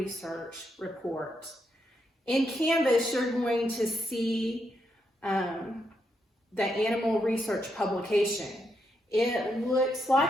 report. In Canvas, you're going to see the animal research publication. It looks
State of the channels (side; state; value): both; normal; correlation 0.80